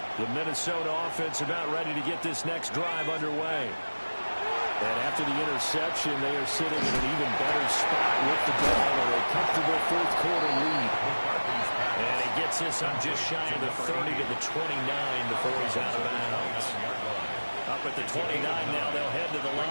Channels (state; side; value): inverted; both; correlation -1.00